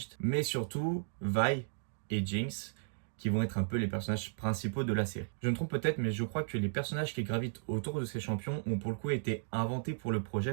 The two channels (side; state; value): left; silent; digital silence